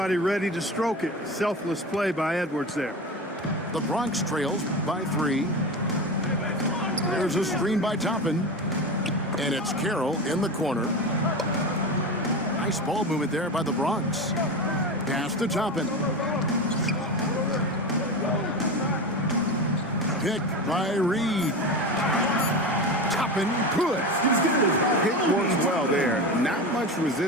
ready to stroke it. Selfless play by Edwards there. The Bronx trails by 3. There's a screen by Toppin. And it's Carroll in the corner. Nice ball movement there by the Bronx. Pass to Toppin. Picked by Reed. Toppin good. Hit works well there. Not much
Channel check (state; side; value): normal; both; correlation 0.24